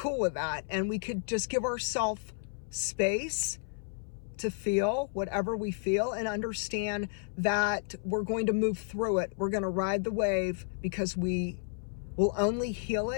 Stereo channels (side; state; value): right; silent; 57 dB below the other